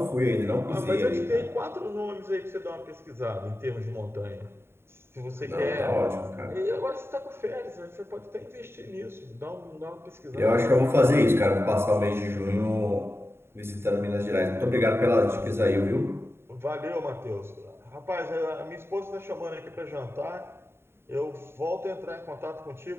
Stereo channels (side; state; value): left; late; 0.12 ms